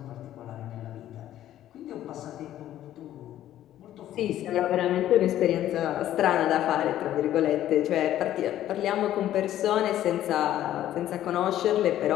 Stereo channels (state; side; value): quieter; right; 12.5 dB